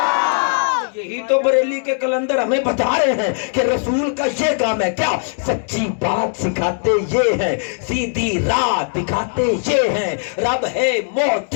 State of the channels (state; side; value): silent; right; 66 dB below the other